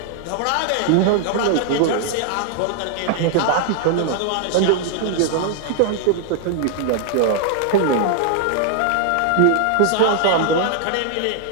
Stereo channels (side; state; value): both; different; correlation 0.00